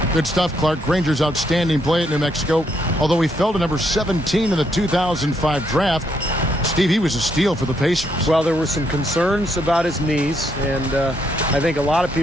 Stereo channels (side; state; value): both; normal; correlation 0.75